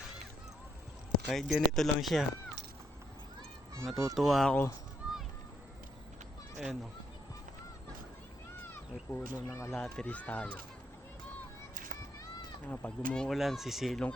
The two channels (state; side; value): normal; both; correlation 0.75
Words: Kahit ganito lang siya. Natutuwa ako. Ayan, oh. May puno ng alateris tayo. Pag umuulan, sisilong